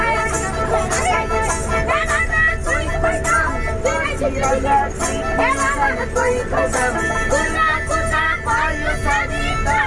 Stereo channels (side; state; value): both; identical; correlation 1.00